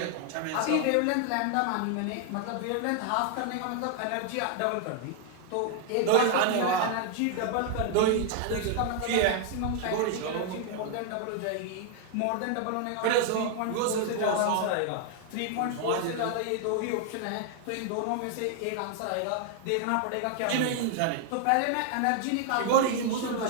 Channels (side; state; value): both; different; correlation 0.00